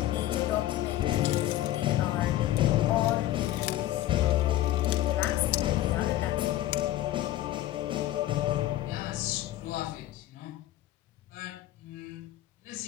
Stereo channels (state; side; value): quieter; right; 14.2 dB